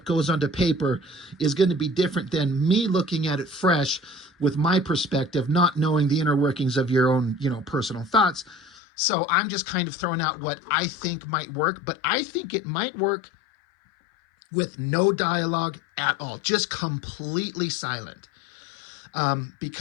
goes onto paper is going to be different than me looking at it fresh with my perspective, not knowing the inner workings of your own, personal thoughts. So I'm just kind of throwing out what I think might work, but I think it might work with no dialogue at all, just completely silent.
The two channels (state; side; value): drops out; right; at 8.8 s